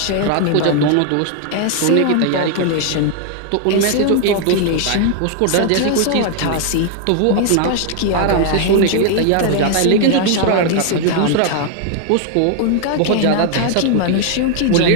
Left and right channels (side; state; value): both; different; correlation 0.00